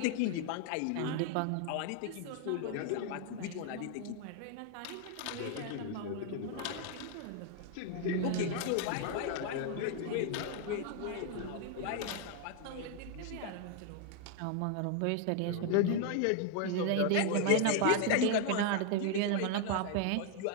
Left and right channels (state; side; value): different; both; correlation 0.00